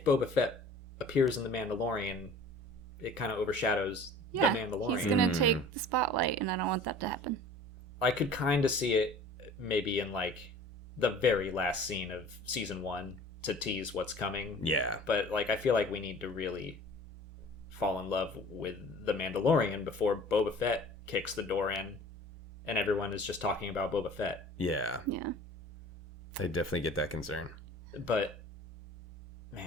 Boba Fett appears in The Mandalorian, it kind of overshadows The Mandalorian. He's gonna take the spotlight, and I don't want that to happen. I could kind of see it maybe in like the very last scene of season 1 to tease what's coming. Yeah. But like, I feel like we need to really fall in love with The Mandalorian before Boba Fett kicks the door in and everyone is just talking about Boba Fett. Yeah. Yeah. I definitely get that concern. But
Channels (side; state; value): both; normal; correlation 0.45